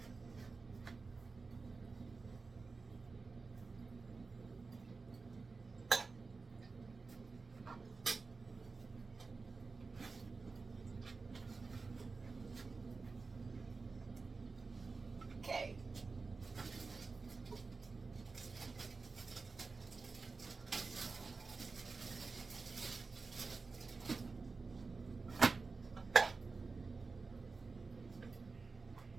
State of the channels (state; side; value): quieter; left; 4.2 dB